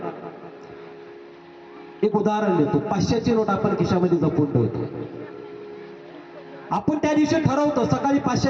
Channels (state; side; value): identical; both; correlation 1.00